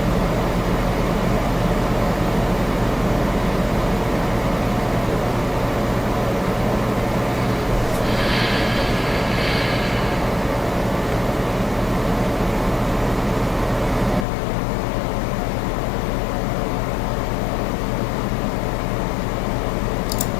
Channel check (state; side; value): drops out; right; at 14.2 s